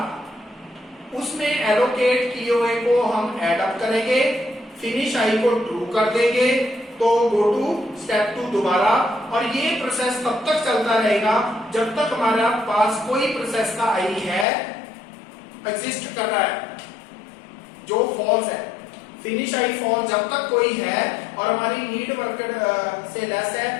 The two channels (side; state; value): right; drops out; at 14.5 s